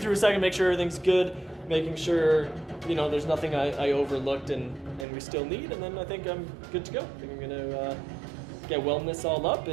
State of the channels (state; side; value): drops out; left; at 5.1 s